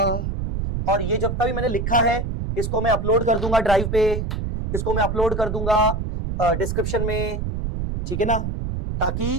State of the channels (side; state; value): right; noise; rumble, 3 dB below the sound